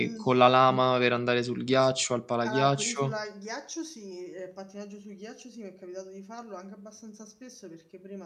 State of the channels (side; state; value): both; identical; correlation 1.00